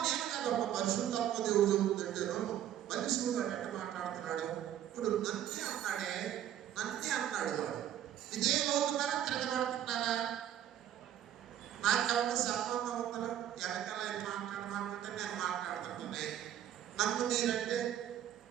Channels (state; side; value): quieter; left; 11.0 dB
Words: నేను కాదమ్మ పరిశుద్ధాత్మ దేవుడు చెబుతుందంటేను మనిషి వాడు ఎట్ట మాట్లాడుతున్నాడు. ఇప్పుడు నన్నే అన్నాడు వాడు. ఇదే అవుతున్నారా తిరగబడుతున్నారా? నాకేమన్నా సంబంధం ఉందా? వెనకాల మాట్లాడమంటే నేను మాట్లాడుతుంటే నన్ను మీరంటే